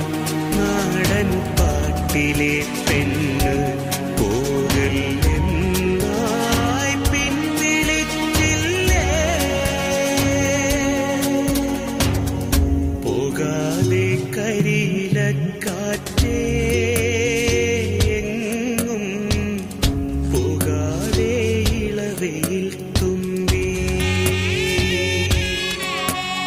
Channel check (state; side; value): identical; both; correlation 1.00